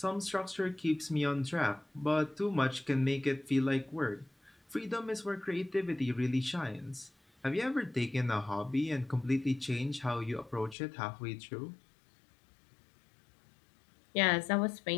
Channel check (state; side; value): drops out; right; at 10.8 s